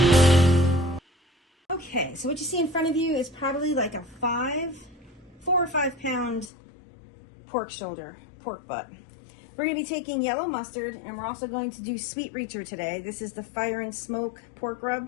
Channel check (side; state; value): right; drops out; at 6.5 s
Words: Okay, so what you see in front of you is probably like a 4 or 5 pound pork shoulder, pork butt. We're going to be taking yellow mustard, and we're also going to do sweet reacher today. This is the fire and smoke pork